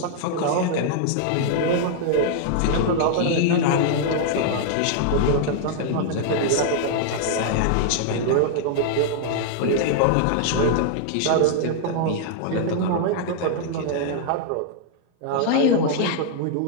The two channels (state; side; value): different; both; correlation -0.01